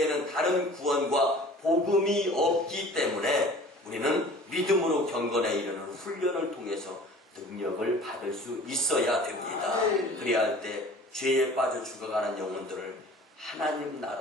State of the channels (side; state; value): both; normal; correlation 0.46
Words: 다른 구원과 복음이 없기 때문에 우리는 믿음으로 경건에 이르는 훈련을 통해서 능력을 받을 수 있어야 됩니다. 그래야 할 때 죄에 빠져 죽어가는 영혼들을 하나님